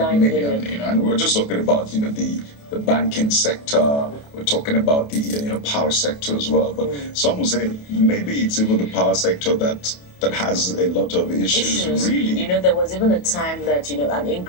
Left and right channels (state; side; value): late; right; 28 ms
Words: million. You know, and we're just talking about the banking sector. We're talking about the power sector as well. But some will say maybe it's even the power sector that has a lot of issues. Really. There was even a time that an